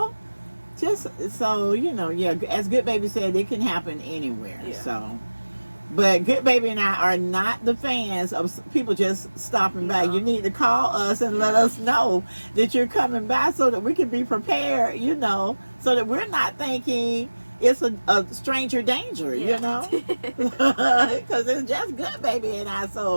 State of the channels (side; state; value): both; inverted; correlation -1.00